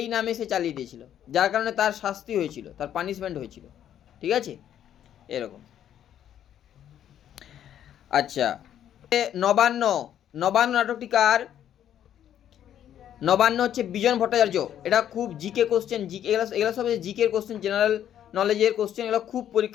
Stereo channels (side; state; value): right; quieter; 10.4 dB